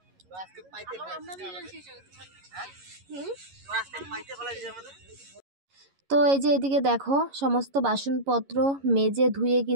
তো এই যে এদিকে দেখো সমস্ত বাসনপত্র মেজে ধুয়ে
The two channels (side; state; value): left; late; 11 ms